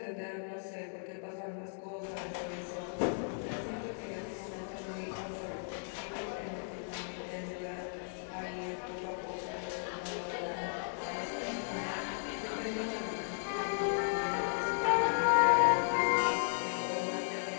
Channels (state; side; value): silent; right; digital silence